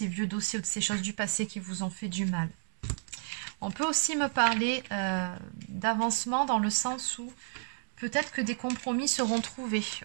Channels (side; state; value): left; silent; digital silence